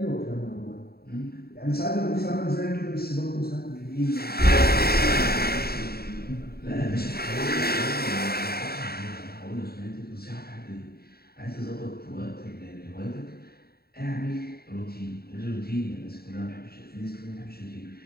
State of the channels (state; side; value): late; right; 0.45 ms